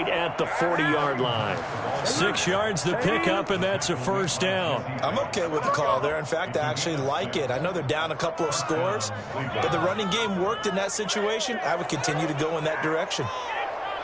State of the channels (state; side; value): identical; both; correlation 1.00